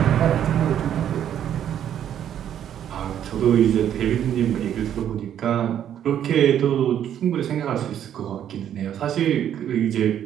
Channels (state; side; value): quieter; left; 10.1 dB